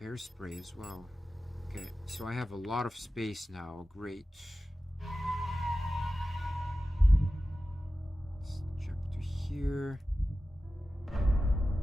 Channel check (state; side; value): normal; both; correlation 0.94